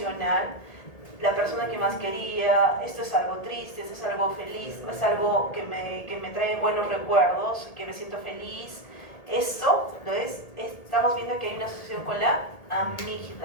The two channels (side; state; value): right; late; 1.8 ms